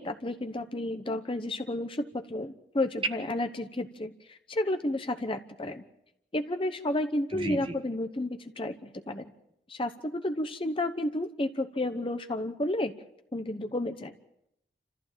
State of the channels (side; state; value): both; normal; correlation 0.63